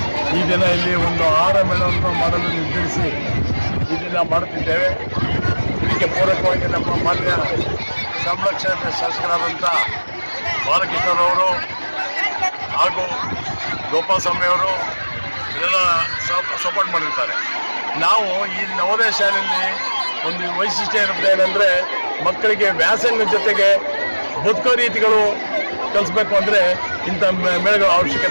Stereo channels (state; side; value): inverted; both; correlation -1.00